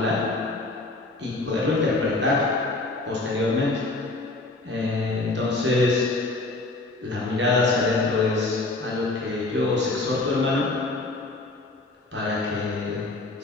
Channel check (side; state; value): right; quieter; 3.0 dB